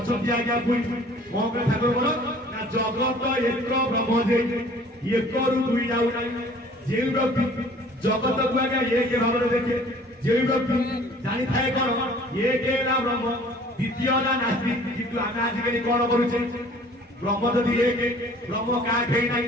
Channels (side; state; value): both; normal; correlation 0.51